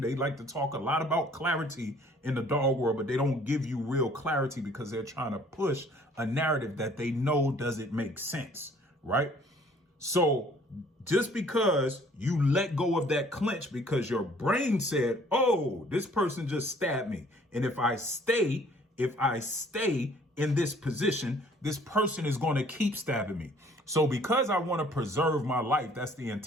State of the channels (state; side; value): normal; both; correlation 0.57